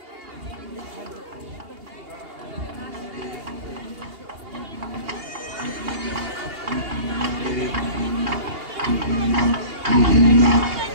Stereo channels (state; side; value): late; left; 2.8 ms